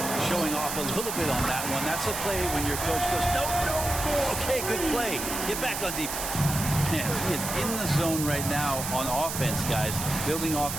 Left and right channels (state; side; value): noise; right; hiss, 4 dB below the sound